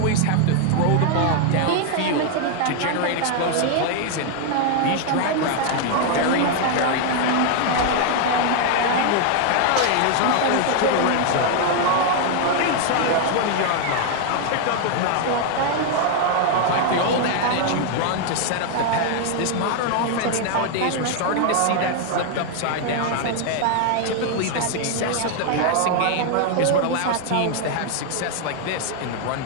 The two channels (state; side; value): different; both; correlation 0.00